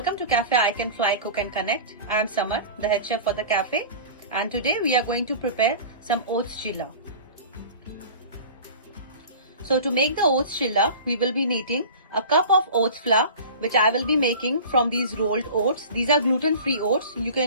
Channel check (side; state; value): both; inverted; correlation -0.38